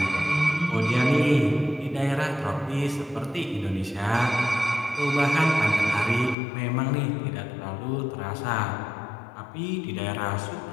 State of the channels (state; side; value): drops out; right; at 6.4 s